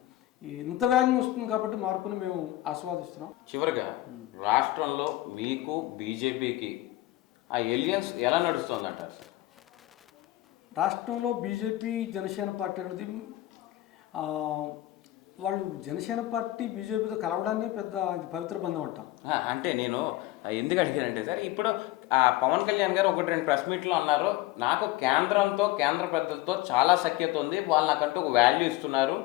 ఇంత వేగంగా వస్తుంది కాబట్టి మార్పుని మేము ఆస్వాదిస్తున్నాం. చివరిగా రాష్ట్రంలో మీకు బీజేపీకి ఆ ఎలియన్స్ ఎలా నడుస్తుందంటారు? రాష్ట్రంలో బీజేపీ జనసేన పార్టీ అనేది వాళ్ళు జనసేన పార్టీ బీజేపీతో కలవడాన్ని పెద్ద ఇది పవిత్ర బంధం అంటాం. అంటే నేను ఎందుకు అడిగానంటే సార్, ఇప్పుడు పవన్ కళ్యాణ్ గారు 1-2 ప్రెస్ మీట్లు అన్నారు, నాకు కేంద్రంతో, కేంద్ర పెద్దలతో చాలా సఖ్యత ఉంది, వాళ్ళు నాకంటూ ఒక వాల్యూ ఇస్తున్నారు,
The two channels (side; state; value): right; quieter; 16.6 dB